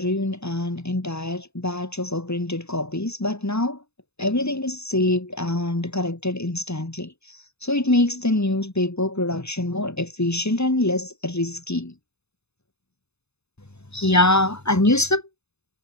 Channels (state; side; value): late; right; 0.80 ms